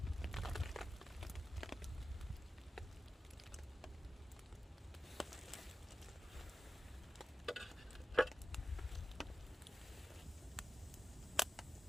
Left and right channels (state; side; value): normal; both; correlation 0.94